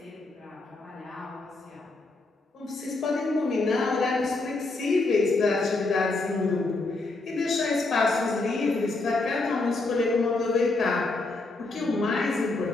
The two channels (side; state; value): right; quieter; 3.3 dB